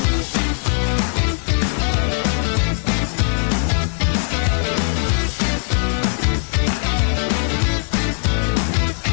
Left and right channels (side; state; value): right; silent; 56 dB below the other